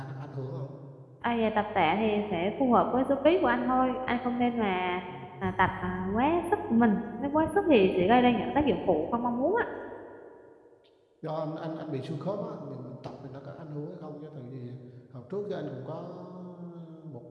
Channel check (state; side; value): identical; both; correlation 1.00